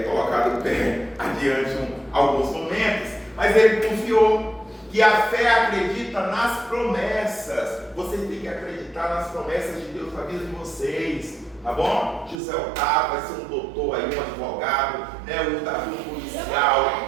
colocado o pé adiante alguns momentos, mas ele confiou. Que a fé acredita nas promessas. Vocês têm que acreditar nas promessas de Deus na vida de vocês, tá bom? José Otávio vai ser um doutor aí, um advogado, né? O Davi um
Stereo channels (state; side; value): drops out; left; at 12.4 s